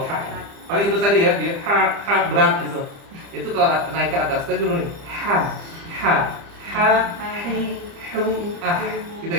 ha. Paling itu tadi ya, dia ha berat gitu. Itu kalau naik ke atas tadi dulu nih. Ha hi hu gitu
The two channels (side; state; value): left; late; 30 ms